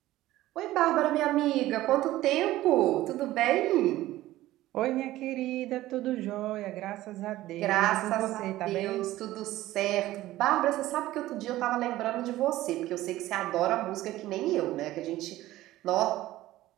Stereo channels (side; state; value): left; quieter; 15.8 dB